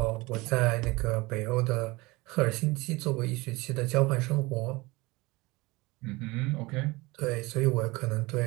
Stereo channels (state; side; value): quieter; left; 22.7 dB